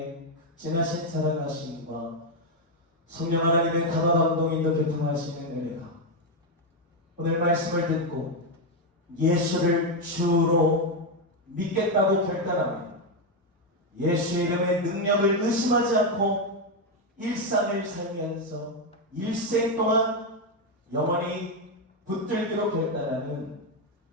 진하신 사랑하심과 성령 하나님의 다방 감동인도 교통하시는 은혜가 오늘 말씀을 듣고 예수를 주로 믿겠다고 결단하며 예수의 이름의 능력을 의심하지 않고 일상을 살면서 일생 동안 영원히 붙들기로 결단하는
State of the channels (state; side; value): normal; both; correlation 0.05